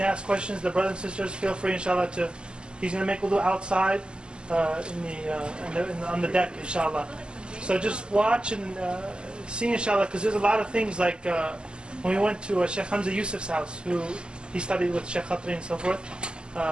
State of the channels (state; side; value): late; left; 0.052 ms